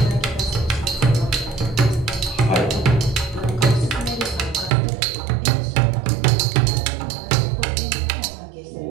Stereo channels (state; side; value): drops out; left; at 4.7 s